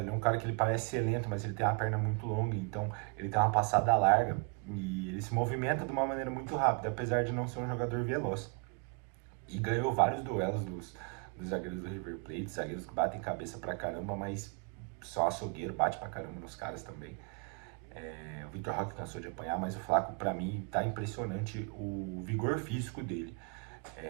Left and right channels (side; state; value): left; quieter; 35.6 dB